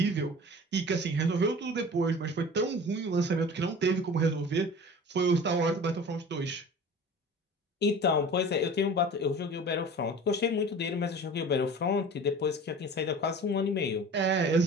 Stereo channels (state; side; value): normal; both; correlation 0.40